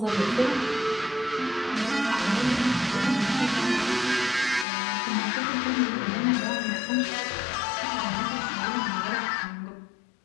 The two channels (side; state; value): right; drops out; at 4.7 s